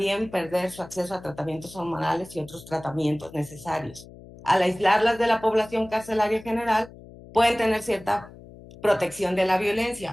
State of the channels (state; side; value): noise; left; hum, 19 dB below the sound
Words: perder su acceso a tratamientos hormonales y otros tratamientos necesarios. Al aislarlas de la población carcelaria general, pueden tener cierta protección de la